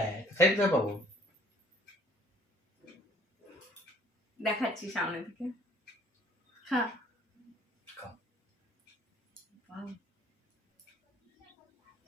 সাইজ তো পাবো দেখাচ্ছি সামনে থেকে। হ্যাঁ খাও।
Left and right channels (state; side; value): normal; both; correlation 0.57